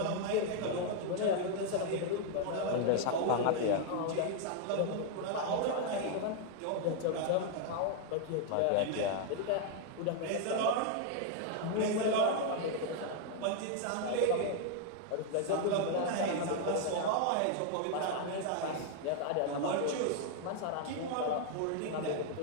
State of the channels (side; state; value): both; different; correlation 0.00